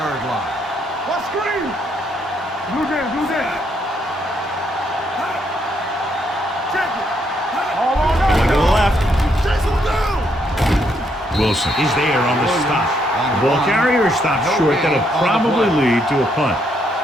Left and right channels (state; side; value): normal; both; correlation 0.74